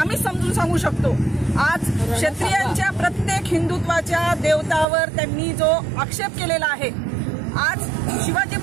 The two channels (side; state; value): left; drops out; at 4.9 s